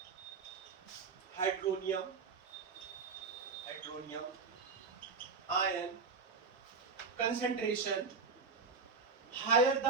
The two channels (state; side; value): quieter; left; 4.8 dB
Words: hydronium ion concentration higher